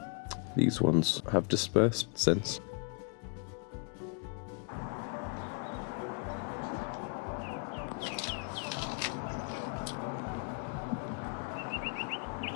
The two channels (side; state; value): right; quieter; 38.8 dB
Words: These ones have dispersed since.